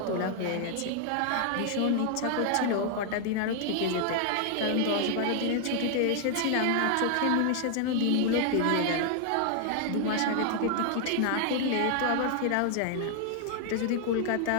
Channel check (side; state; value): both; different; correlation 0.00